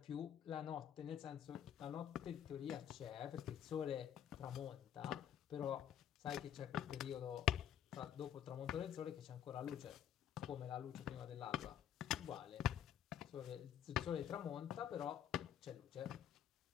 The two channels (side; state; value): right; quieter; 9.8 dB